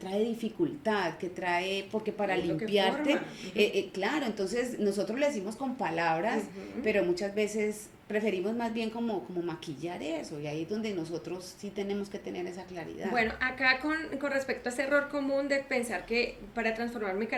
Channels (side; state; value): both; identical; correlation 1.00